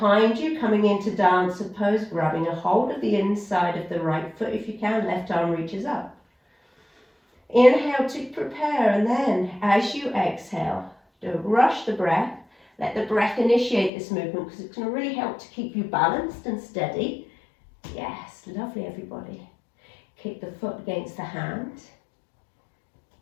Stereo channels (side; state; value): right; drops out; at 13.9 s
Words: you, coming into dancer pose, grabbing a hold of the inside of the right foot if you can, left arm reaches up. Inhale to prepare, and then as you exhale, don't rush the breath. Let the breath initiate this movement because it's going to really help to keep you balanced and steady. Yes, lovely everybody. Kick the foot against the hand.